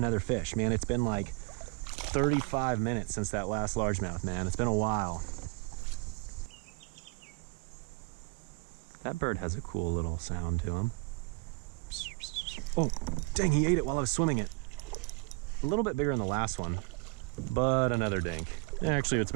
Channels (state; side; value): quieter; left; 29.9 dB